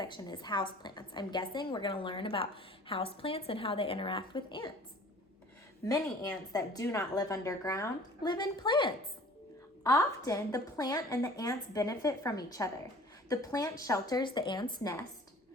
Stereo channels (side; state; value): both; normal; correlation 0.48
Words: is houseplants. I'm guessing we're going to learn about houseplants and how they interact with ants. Many ants that do not live underground live in plants. Often, the plant and the ants benefit from each other. The plant shelters the ant's nest,